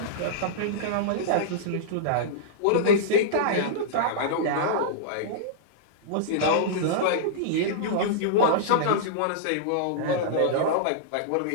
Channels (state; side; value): different; both; correlation -0.03